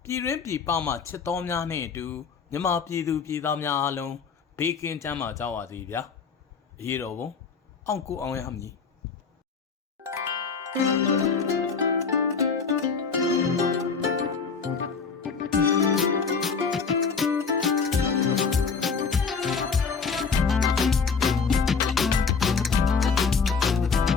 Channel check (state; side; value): quieter; right; 5.4 dB